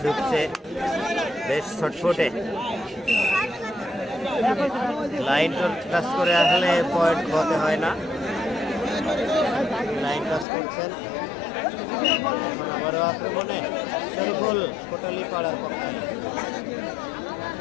ঢুকছে, বেশ ছটফটে। লাইন টাচ করে আসলে পয়েন্ট হতে হয় না। লাইন টাচ করছেন। এখন আবারও আক্রমণে শরীফুল কোটালি পাড়ার পক্ষে।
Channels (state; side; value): drops out; right; at 10.5 s